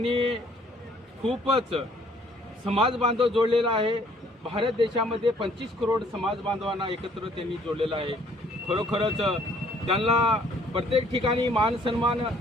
खूपच समाज बांधव जोडलेला आहे। भारत देशामध्ये 25 करोड समाज बांधवांना एकत्र त्यांनी जोडलेला आहे। खरोखरच त्यांना प्रत्येक ठिकाणी मान सन्मान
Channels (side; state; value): both; normal; correlation 0.61